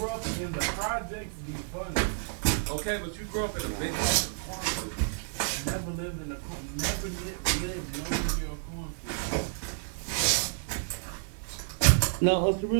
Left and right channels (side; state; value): left; silent; 58 dB below the other